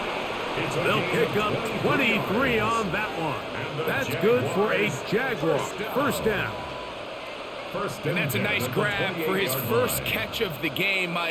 They'll pick up 23 on that one. That's good for a Jaguar. 1st down. And that's a nice grab for his first catch of the game,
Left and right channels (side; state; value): both; identical; correlation 1.00